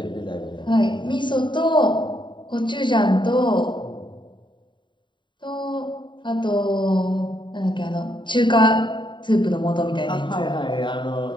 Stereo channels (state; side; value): late; right; 0.23 ms